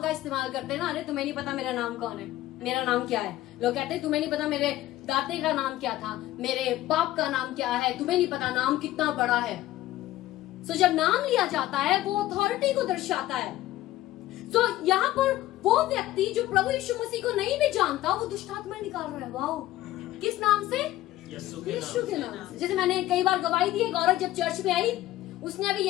इस्तेमाल करते हैं ना, अरे तुम्हें नहीं पता मेरा नाम कौन है, मेरा नाम क्या है। लोग कहते हैं तुम्हें नहीं पता मेरे दादे का नाम क्या था, मेरे बाप का नाम क्या है, तुम्हें नहीं पता नाम कितना बड़ा है। सो जब नाम लिया जाता है वो अथॉरिटी को दर्शाता है। सो यहाँ पर वो व्यक्ति जो प्रभु यीशु मसीह को नहीं भी जानता, वो दुष्ट आत्मा निकाल रहा है। वाओ, किस नाम से? यीशु के नाम से। जैसे मैंने कई बार गवाही दी, एक औरत जब चर्च में आई, उसने अभी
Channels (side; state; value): right; quieter; 15.4 dB